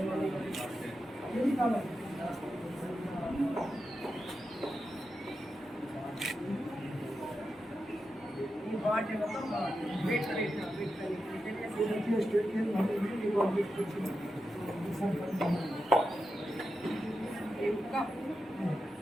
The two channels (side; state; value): both; normal; correlation 0.89